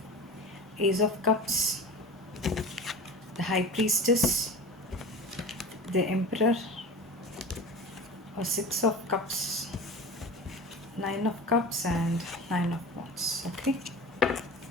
Ace of Cups, the High Priestess, the Emperor, or 6 of Cups, 9 of Cups, and 9 of Wands. Okay.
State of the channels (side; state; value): both; normal; correlation 0.33